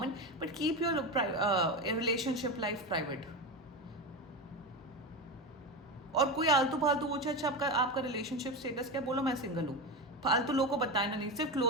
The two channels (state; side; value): normal; both; correlation 0.19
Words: but keep your relationship life private. और कोई आलतू फालतू पूछे अच्छा आपका आपका रिलेशनशिप स्टेटस क्या, बोलो मैं सिंगल हूँ। फालतू लोगों को बताना नहीं, सिर्फ